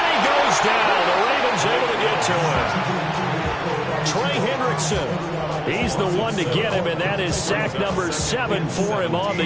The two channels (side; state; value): both; identical; correlation 1.00